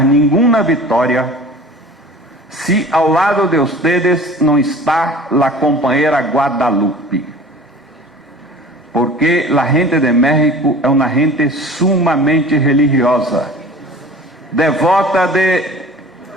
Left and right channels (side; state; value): both; normal; correlation 0.42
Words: nenhuma vitória se ao lado de ustedes não está a companheira Guadalupe. Porque a gente de México é uma gente sumamente religiosa, devota de